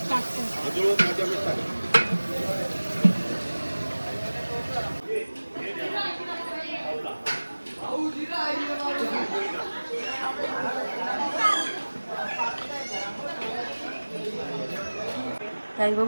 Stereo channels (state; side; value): inverted; both; correlation -1.00